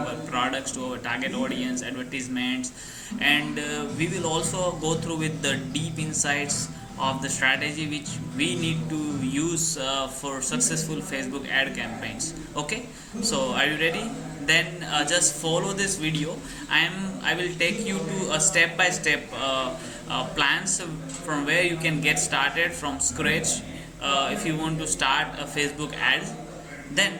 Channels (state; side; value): identical; both; correlation 1.00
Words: products to our target audience, advertisements, and we will also go through with the deep insights of the strategy which we need to use for successful Facebook ad campaigns. Okay, so are you ready? Then just follow this video. I will take you to a step by step plans from where you can get started from scratch if you want to start a Facebook ad. Then